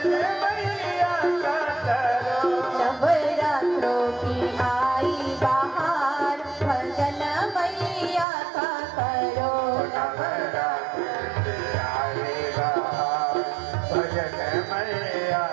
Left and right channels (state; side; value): drops out; left; at 8.2 s